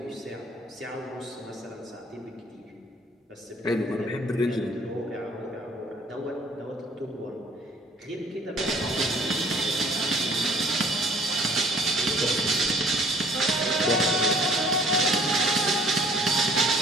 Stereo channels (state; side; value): normal; both; correlation 0.55